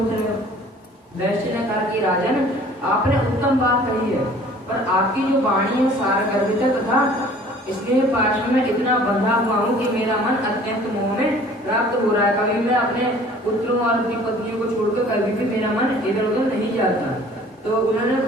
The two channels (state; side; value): normal; both; correlation 0.51